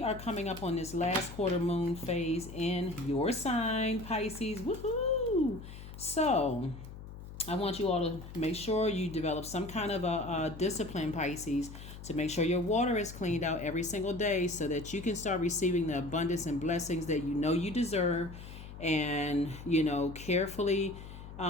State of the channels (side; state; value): left; noise; hum, 13 dB below the sound